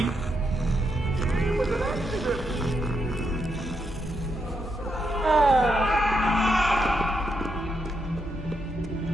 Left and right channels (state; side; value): normal; both; correlation 0.81